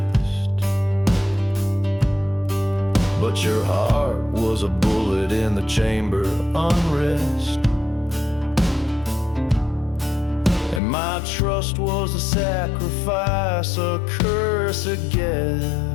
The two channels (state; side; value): drops out; right; at 10.8 s